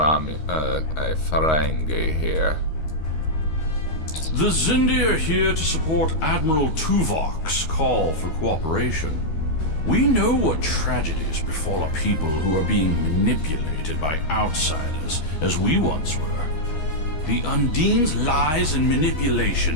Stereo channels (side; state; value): right; late; 13 ms